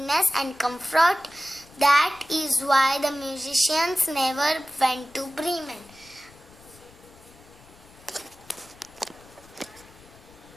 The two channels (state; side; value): noise; left; rumble, 25 dB below the sound